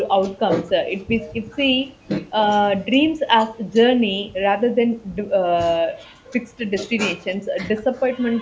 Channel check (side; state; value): both; identical; correlation 1.00